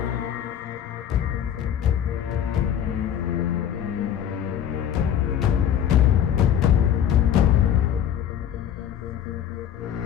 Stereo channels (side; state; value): right; quieter; 9.7 dB